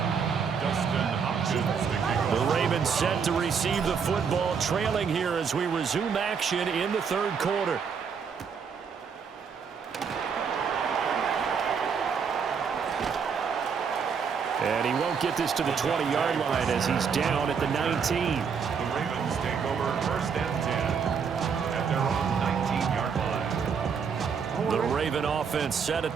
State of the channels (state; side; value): quieter; left; 6.3 dB